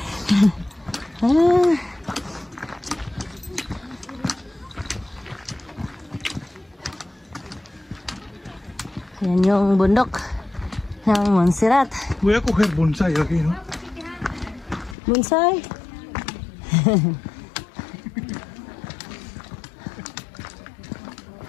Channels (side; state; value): right; drops out; at 15.0 s